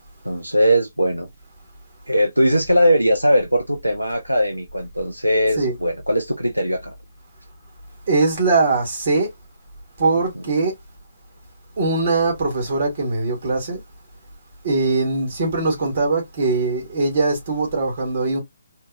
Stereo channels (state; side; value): inverted; both; correlation -0.77